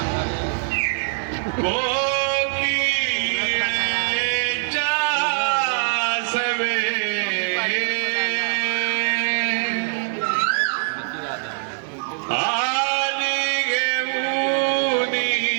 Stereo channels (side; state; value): left; silent; 59 dB below the other